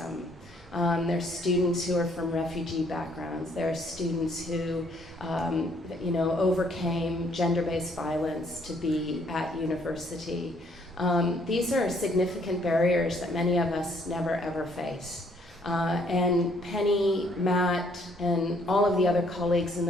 There are students who are from refugee backgrounds. There are students who overcame gender-based violence to be at university. These are significant barriers that many of us never ever face. And Penny, Matt, and all of the other colleagues in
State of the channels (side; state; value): both; normal; correlation 0.65